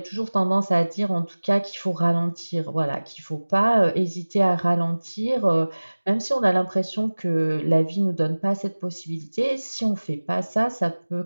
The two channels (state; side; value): inverted; both; correlation -1.00